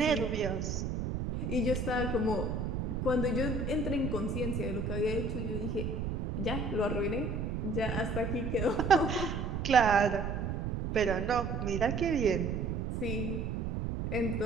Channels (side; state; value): right; noise; rumble, 2 dB below the sound